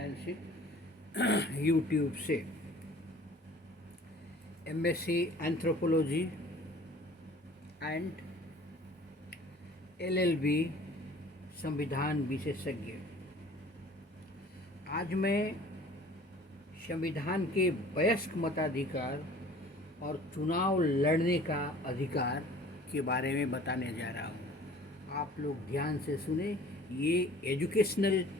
Singh YouTube से MSc anthropology and LLB संविधान विशेषज्ञ। आज मैं संविधान के वयस्क मताधिकार और चुनाव लड़ने का अधिकार के बारे में बताने जा रहा हूँ। आप लोग ध्यान से सुने, ये एजुकेशनल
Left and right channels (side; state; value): both; normal; correlation 0.49